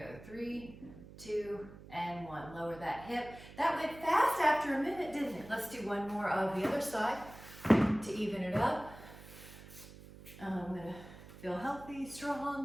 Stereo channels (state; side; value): noise; right; hum, 17 dB below the sound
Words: 3, 2, and 1. Lower that hip. That went fast after a minute, didn't it? Let's do one more of the other side to even it up. I'm gonna feel healthy,